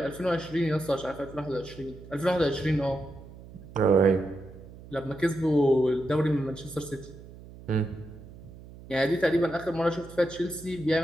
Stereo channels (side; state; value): right; noise; hum, 17 dB below the sound